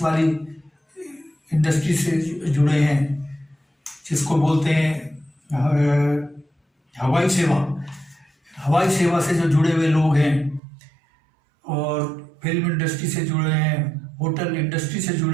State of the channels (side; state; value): left; drops out; at 10.6 s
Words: वाली इंडस्ट्री से जुड़े हैं, जिसको बोलते हैं हवाई सेवा। हवाई सेवा से जो जुड़े हुए लोग हैं और फिल्म इंडस्ट्री से जुड़े हैं, होटल इंडस्ट्री से